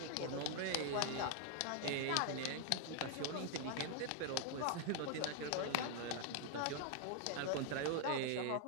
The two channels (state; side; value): different; both; correlation 0.00